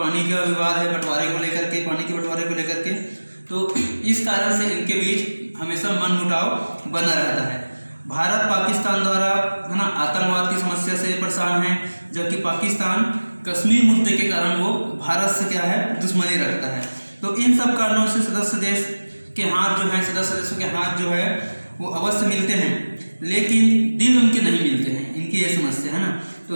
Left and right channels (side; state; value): both; inverted; correlation -1.00